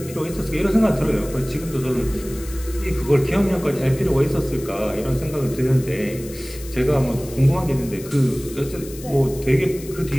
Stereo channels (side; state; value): left; noise; hiss, 16 dB below the sound